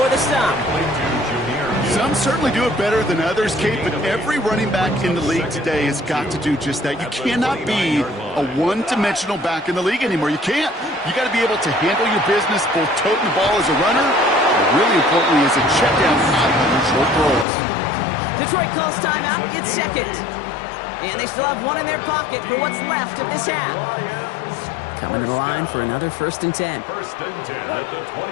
the stop. Some certainly do it better than others, Kate, but every running back in the league today has got to do just that. You cannot be a one-dimensional back in the league anymore. You can't. You got to be able to handle your business, both toting the ball as a runner, but really importantly as a check down out of short throws. Detroit calls timeout. It's 2nd. And they still have 1 in their pocket for what's left of this half. Coming to the line for another 1st and 10. First and 10 at the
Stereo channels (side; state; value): right; drops out; at 17.4 s